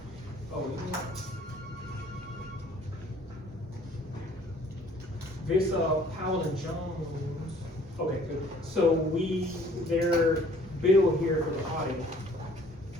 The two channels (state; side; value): normal; both; correlation 0.56